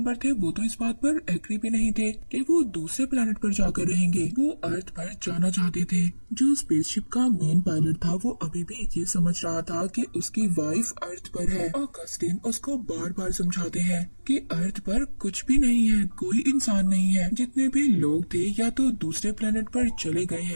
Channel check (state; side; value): inverted; both; correlation -1.00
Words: थे वो तो इस बात पर एग्री भी नहीं थे कि वो दूसरे प्लेनेट पर जाकर रहेंगे। वो अर्थ पर जाना चाहते थे। जो स्पेसशिप का मेन पायलट था वो अभी भी ये समझ रहा था कि उसकी वाइफ अर्थ पर है। ऑगस्टिन उसको बार बार समझाते हैं कि अर्थ पर कुछ भी नहीं है, कोई इंसान नहीं है। जितने भी लोग थे या तो दूसरे प्लेनेट पर चले गए